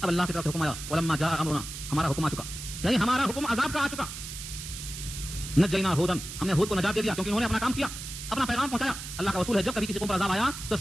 اب اللہ کی طرف سے حکم آیا, ولما جاء امرنا, ہمارا حکم آ چکا, یعنی ہمارا حکم عذاب کا آ چکا. نجینا ہودن, ہم نے ہود کو نجات دے دیا کیونکہ انہوں نے اپنا کام کیا, اپنا پیغام پہنچایا. اللہ کا اصول ہے جب کبھی کسی قوم پر عذاب آیا تو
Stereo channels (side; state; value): right; noise; hiss, 9 dB below the sound